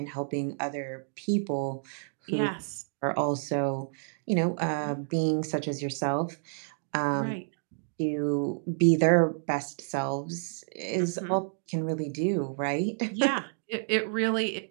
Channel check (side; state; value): left; silent; digital silence